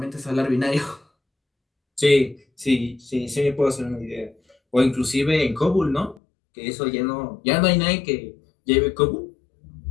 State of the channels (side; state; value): right; drops out; at 6.2 s